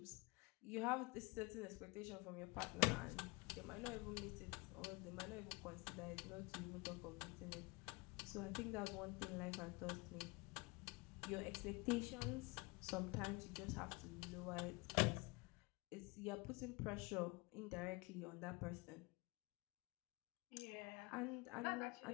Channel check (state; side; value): quieter; right; 26.2 dB